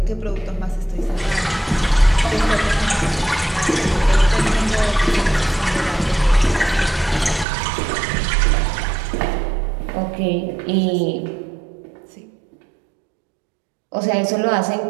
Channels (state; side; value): drops out; left; at 7.5 s